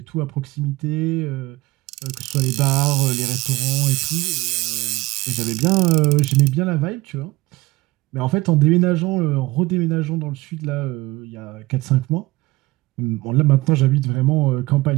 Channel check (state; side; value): quieter; left; 20.2 dB